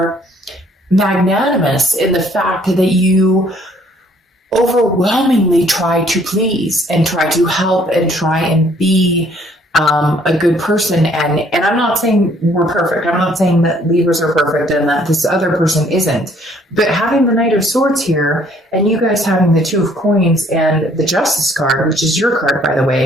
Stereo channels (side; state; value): both; normal; correlation 0.62